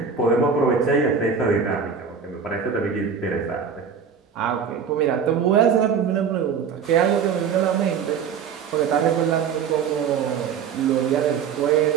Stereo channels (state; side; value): quieter; left; 6.7 dB